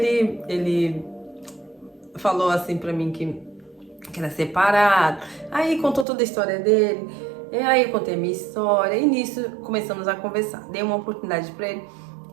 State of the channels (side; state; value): left; drops out; at 6.1 s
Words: falou assim pra mim que era separado. Aí contou toda a história dele. E aí eu contei a minha história. E nisso começamos a conversar. Dei uma oportunidade pra ele.